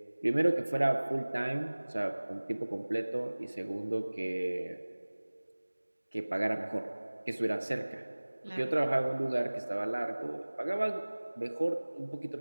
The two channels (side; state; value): both; inverted; correlation -1.00